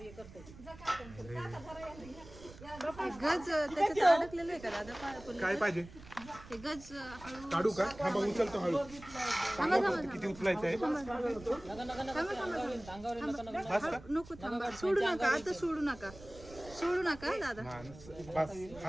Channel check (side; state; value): right; noise; rumble, 18 dB below the sound